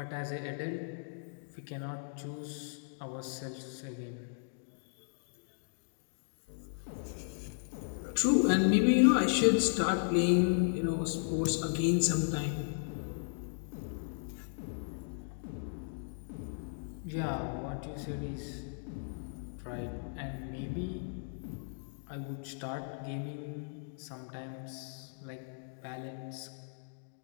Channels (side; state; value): right; silent; digital silence